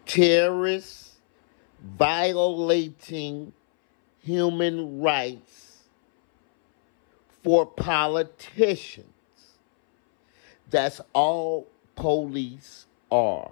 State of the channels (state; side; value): silent; right; 62 dB below the other